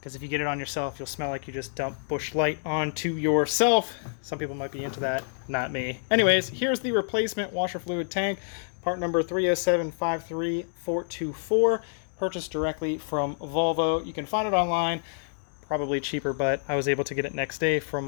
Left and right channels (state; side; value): silent; right; digital silence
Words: if you get it on yourself, you'll smell like you just dumped Busch Light onto yourself. Some people might be into that, not me. Anyways, here's the replacement washer fluid tank, part number 307-53424, purchased directly from Volvo. You can find it online, probably cheaper, but I was able to get it next day from